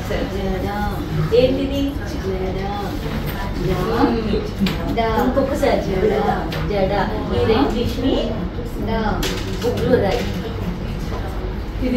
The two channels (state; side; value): identical; both; correlation 1.00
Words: ఏంటిది? ఇంకొకసారి జడ. జడ. ఇది ఇంగ్లీష్ ని బుక్లో రాయి.